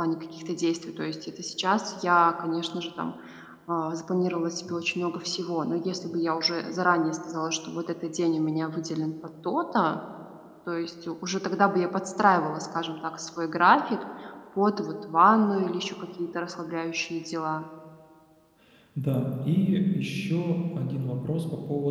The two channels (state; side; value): identical; both; correlation 1.00